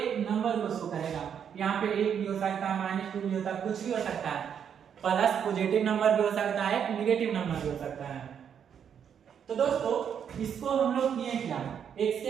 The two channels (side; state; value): left; quieter; 8.1 dB